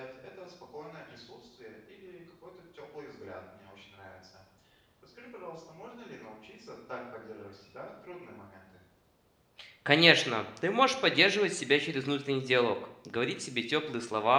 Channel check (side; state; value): both; identical; correlation 1.00